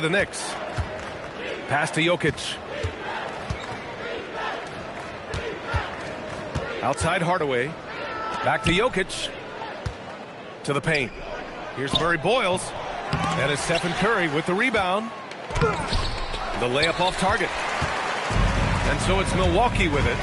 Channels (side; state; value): both; identical; correlation 1.00